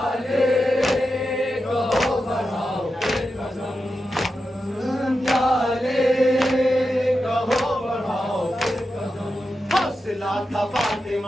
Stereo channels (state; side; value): normal; both; correlation 0.89